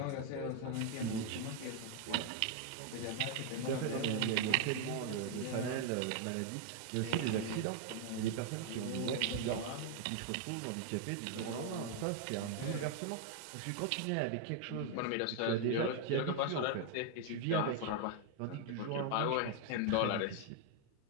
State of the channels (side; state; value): both; different; correlation 0.00